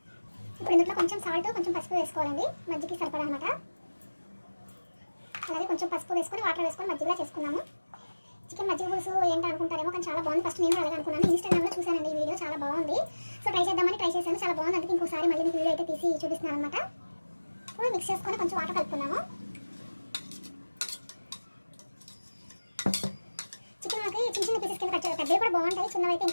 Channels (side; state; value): both; inverted; correlation -1.00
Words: ఇప్పుడు ఇందులో కొంచెం సాల్ట్, కొంచెం పసుపు వేసుకోవాలండి, మజ్జిగకి సరిపడా అనమాట. అలాగే కొంచెం పసుపు వేసుకొని వాటర్ వేసుకొని మజ్జిగలా చేసుకున్నాము. చికెన్ మజ్జిగ పులుసు ఏంటి అనుకుంటారేమో, కానీ చాలా బాగుంది. ఫస్ట్ నేను అలాగే అనుకున్నాను, ఇన్స్టాగ్రామ్లో చూసానండి ఈ వీడియో, చాలా బాగుంది. సో ట్రై చేద్దామని ట్రై చేశాను, చాలా బాగుంది. అందుకే ఇంకోసారి మళ్ళీ మీకు వీడియో అయితే తీసి చూపిస్తున్నాను అనమాట. ఇప్పుడు మిక్స్ చేసుకొని కొంచెం వాటర్ కలుపుకున్నాము. చికెన్ మనకి చిన్న చిన్న పీసెస్ కింద కట్ చేయాలి, పెద్దవి కూడా బాగుంటాయి, చిన్నవి అయితే